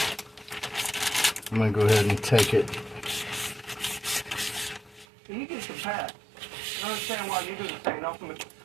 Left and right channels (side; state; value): left; drops out; at 5.1 s